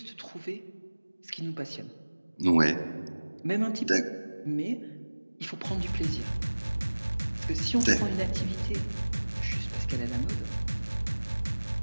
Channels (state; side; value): inverted; both; correlation -1.00